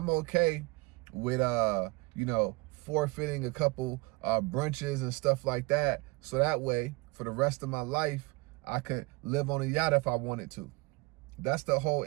okay with, forfeiting a couple brunches and stuff like that. So that way, for the rest of my life, I could live on a yacht if I wanted to. That's the whole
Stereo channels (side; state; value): left; quieter; 25.2 dB